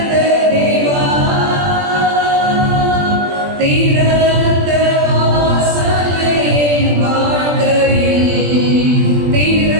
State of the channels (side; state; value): left; late; 20 ms